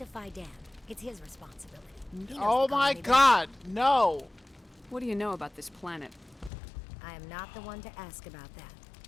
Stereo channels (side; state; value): right; drops out; at 6.5 s